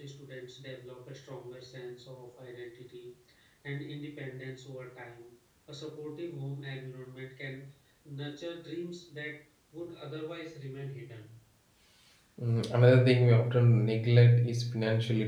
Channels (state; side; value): identical; both; correlation 1.00